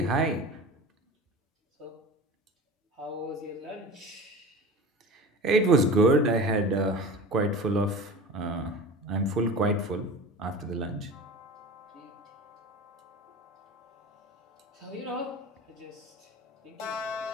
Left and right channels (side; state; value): both; normal; correlation 0.34